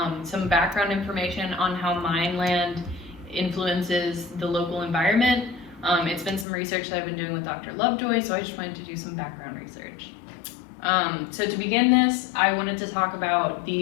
some background information on how mine land influences the local environment. It's been some research that I've been doing with Dr. Lovejoy, so I just wanted to do some background research. So to begin this, I wanted to talk about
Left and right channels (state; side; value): drops out; right; at 6.5 s